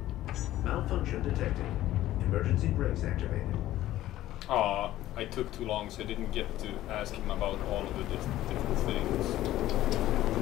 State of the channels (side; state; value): right; quieter; 14.5 dB